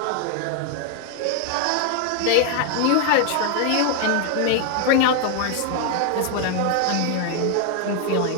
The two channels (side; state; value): both; different; correlation 0.00